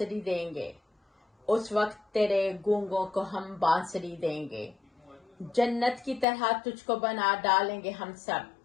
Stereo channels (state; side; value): drops out; right; at 6.2 s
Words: دیں گے، اس وقت تیرے گونگوں کو ہم بانسری دیں گے، جنت کی طرح تجھ کو بنا ڈالیں گے ہم